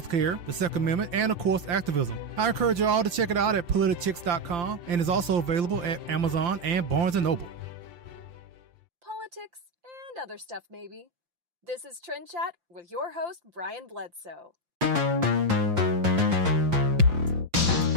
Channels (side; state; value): left; late; 5.8 ms